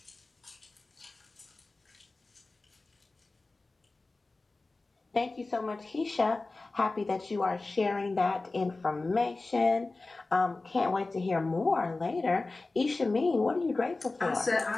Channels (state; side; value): quieter; right; 3.4 dB